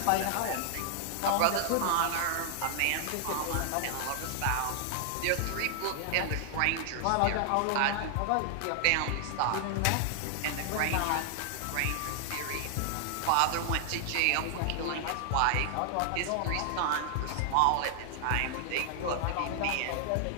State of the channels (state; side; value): different; both; correlation 0.00